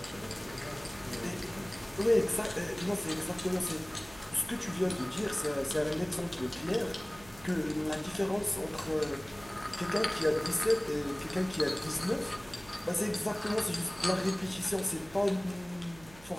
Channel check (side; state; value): right; noise; hum, 22 dB below the sound